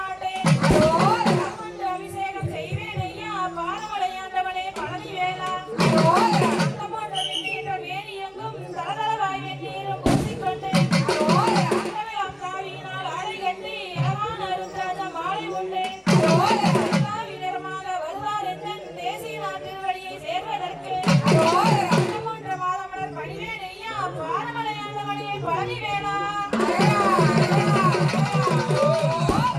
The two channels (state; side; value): identical; both; correlation 1.00